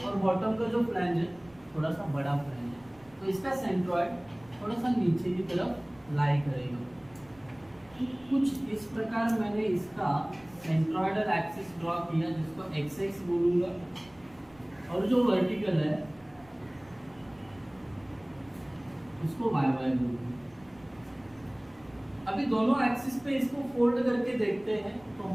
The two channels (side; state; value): right; noise; rumble, 27 dB below the sound